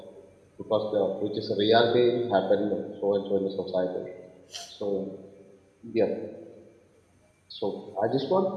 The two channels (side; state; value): both; identical; correlation 1.00